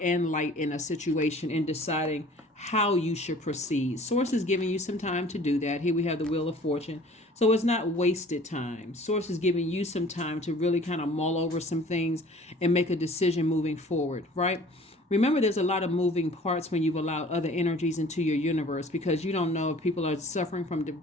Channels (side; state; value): both; normal; correlation 0.49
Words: and light in a situation and deciding how you should proceed. Source is giving you some time to do that. Here we have the Wheel of Fortune. So it's not wasted time. Source is giving you some time to really kind of mull over some things and make a decision moving forward, right? Remember, there's a lot of moving parts when you've allowed other energies into your universe, because you don't know if people are suffering from